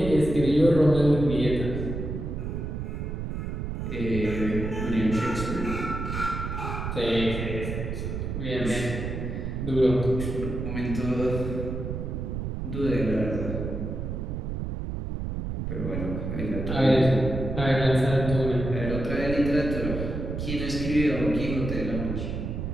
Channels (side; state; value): right; noise; rumble, 4 dB below the sound